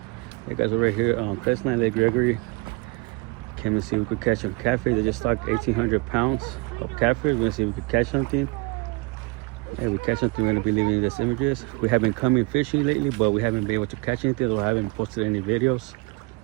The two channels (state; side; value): quieter; left; 27.0 dB